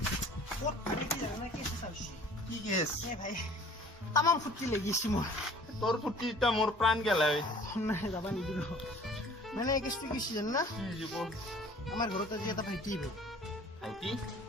কি কেছ তামাম ফুটি লাগিছে মোৰ তোৰ ফুটি এটা মোৰ প্ৰাণ গেলাই নাই যাবা নিদিব মানে কেছটো কি জান না কি জীৱ আমাৰ ঘৰত আজি এটা ভাইটি ভাইটি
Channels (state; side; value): normal; both; correlation 0.50